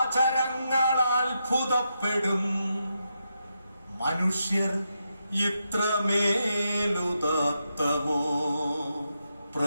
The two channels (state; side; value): inverted; both; correlation -0.84